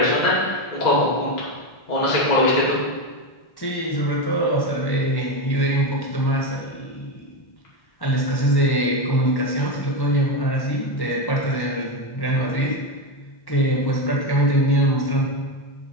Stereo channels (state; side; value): late; right; 1.1 ms